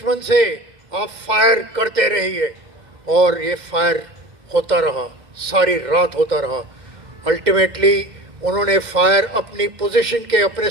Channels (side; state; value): left; late; 2.1 ms